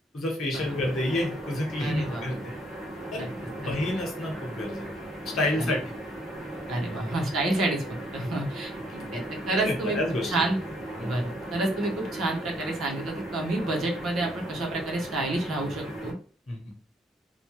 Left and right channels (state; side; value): normal; both; correlation 0.68